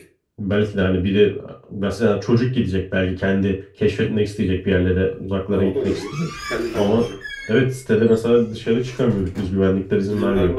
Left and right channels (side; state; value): both; identical; correlation 1.00